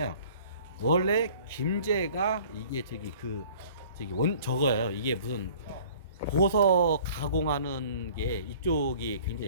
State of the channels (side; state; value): both; inverted; correlation -0.50